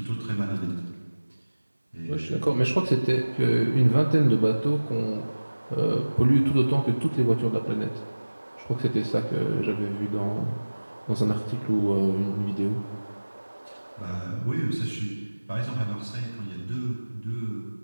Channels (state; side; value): inverted; both; correlation -1.00